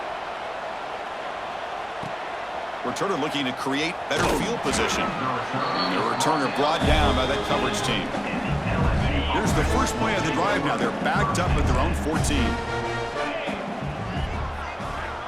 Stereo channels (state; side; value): identical; both; correlation 1.00